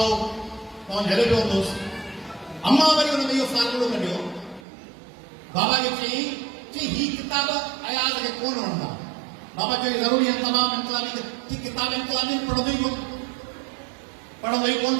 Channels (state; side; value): drops out; left; at 4.6 s